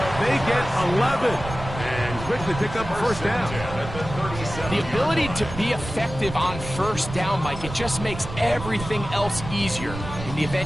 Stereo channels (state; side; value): noise; right; rumble, 10 dB below the sound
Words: They get 11 and quickly pick up a 1st down. The ability to be effective on 1st down, Mike, it just makes everything else easier. In the